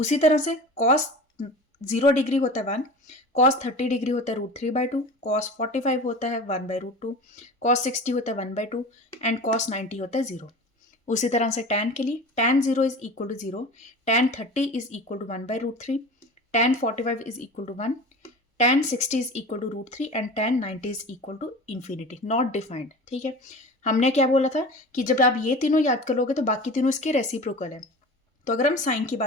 तरह से कॉस 0 डिग्री होता है 1, कॉस 30 डिग्री होता है √3/2, कॉस 45 होता है 1/√2, कॉस 60 होता है 1/2 एंड कॉस 90 होता है 0। उसी तरह से टैन के लिए, tan 0 is equal to 0, tan 30 is equal to 1/√3, tan 45 is equal to 1, tan 60 is equal to √3 and tan 90 is equal to infinity, not defined. ठीक है, हमने क्या बोला था कि जब आप ये तीनों याद कर लोगे तो बाकी तीनों इसके रेसिप्रोकल है। तो अगर हम साइन की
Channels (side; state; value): both; normal; correlation 0.35